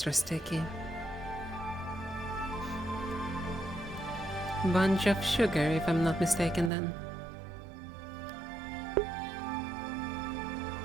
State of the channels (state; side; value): drops out; left; at 6.7 s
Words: sticky. Bunch of sugar, if I'm not mistaken then.